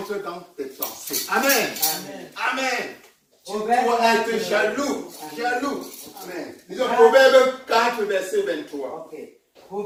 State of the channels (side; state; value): both; identical; correlation 1.00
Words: dans tes pensées. Amen. Amen. Tu dois être jaloux. Amen. Disons Proverbe 4 verset 23. Ok.